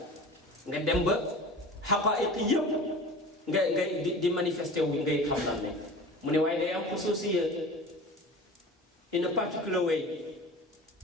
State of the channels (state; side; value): normal; both; correlation 0.37